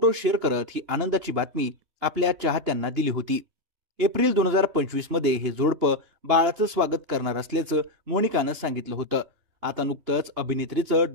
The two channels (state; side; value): late; left; 2.9 ms